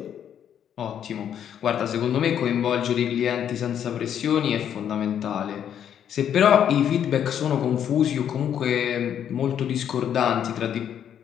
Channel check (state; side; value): quieter; right; 9.3 dB